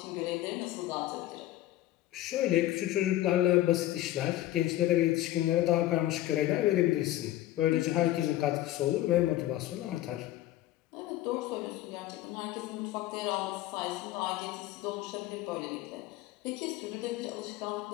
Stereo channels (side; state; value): right; quieter; 14.9 dB